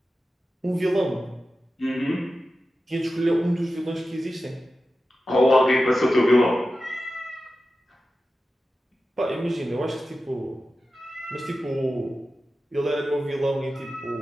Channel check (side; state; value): both; normal; correlation 0.93